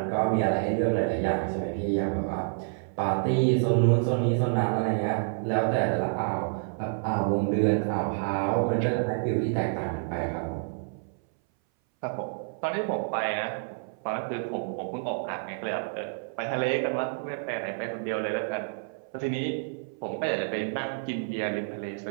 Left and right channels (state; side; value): silent; left; 59 dB below the other